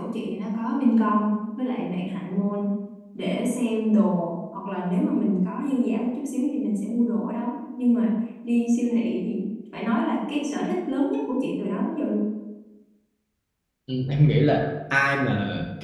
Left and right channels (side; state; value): both; identical; correlation 1.00